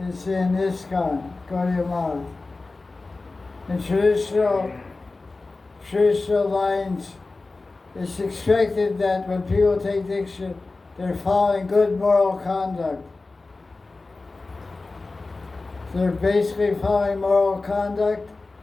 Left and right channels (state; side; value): quieter; right; 3.5 dB